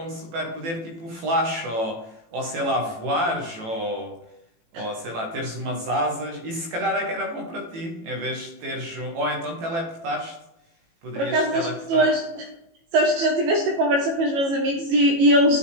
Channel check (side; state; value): left; late; 18 ms